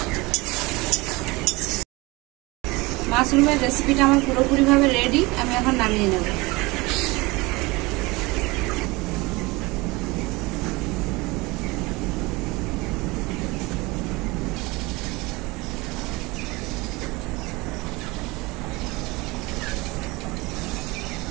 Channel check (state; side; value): quieter; left; 23.3 dB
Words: মাশরুমের রেসিপিটা আমার পুরোপুরিভাবে রেডি। আমি এখন নামিয়ে নেব।